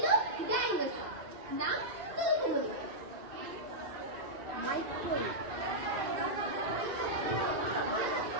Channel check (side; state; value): left; late; 2.6 ms